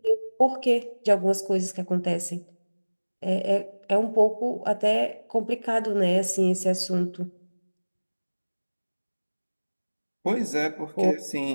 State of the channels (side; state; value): both; inverted; correlation -1.00